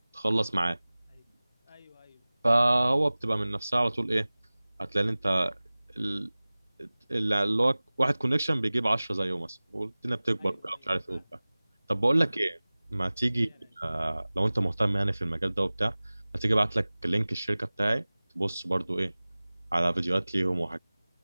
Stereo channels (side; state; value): both; inverted; correlation -0.99